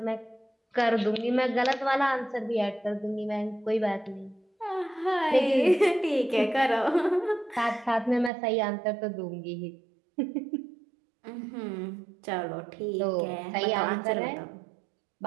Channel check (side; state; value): left; drops out; at 8.3 s